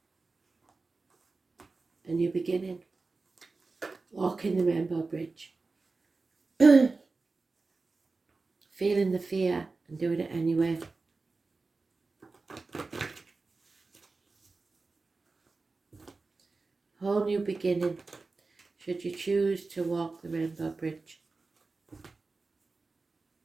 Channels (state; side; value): quieter; left; 3.8 dB